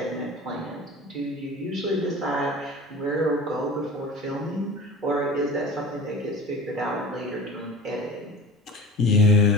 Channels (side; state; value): both; normal; correlation 0.38